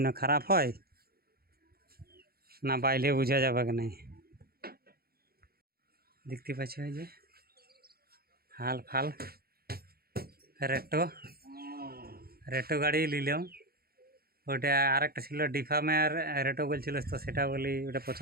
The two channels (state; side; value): late; left; 0.44 ms